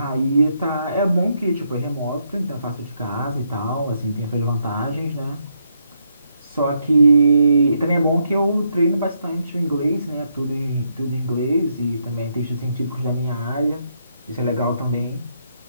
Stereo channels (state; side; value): inverted; both; correlation -0.77